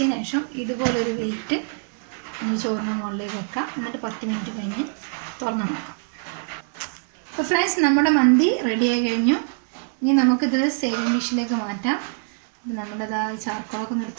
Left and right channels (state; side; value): silent; left; 61 dB below the other